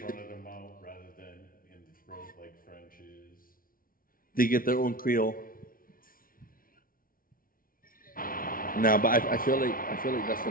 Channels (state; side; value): late; right; 0.42 ms